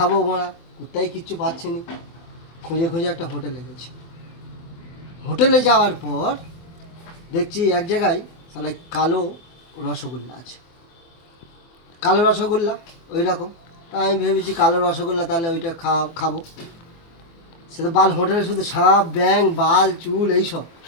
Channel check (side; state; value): right; late; 24 ms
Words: মোড়া, কোথায় কিচ্ছু পাচ্ছি নি। খুঁজে খুঁজে একটা হোটেলে গেছি। হোটেলে যাওয়ার পর দেখছি এক জায়গায় তাহলে কালো রসগোল্লা আছে। কালো রসগোল্লা ওই রকম। তা আমি ভেবেছি কালো রসগোল্লা, তাহলে ওইটা খাবো। সে তো বাল হোটেলে শুধু সাপ ব্যাং বাল চুল এইসব।